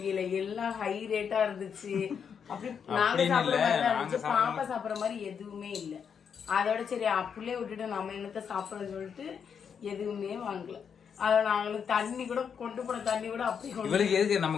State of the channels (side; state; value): right; quieter; 7.1 dB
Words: எல்லாம் ஹை ரேட்டா இருந்துச்சு. அப்படி நாங்க சாப்பிடுற மாதிரி தான் இருந்துச்சு, பாப்பா சாப்பிடுற மாதிரி எதுவுமே இல்லை. அதோட சரி அப்படியே விட்டுட்டு நம்ம என்னத்த சாப்பிடறன்னு சொல்லிட்டு எதுவுமே வாங்கல. அதை நாங்களுக்கு தண்ணி கூட கொண்டு போன தண்ணி கூட அப்படி இவளுக்கு எதுக்கு